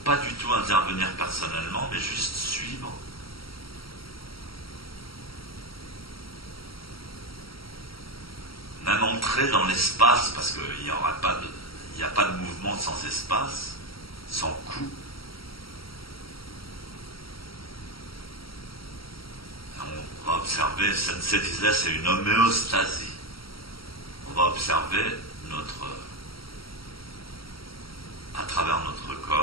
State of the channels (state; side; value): late; right; 0.75 ms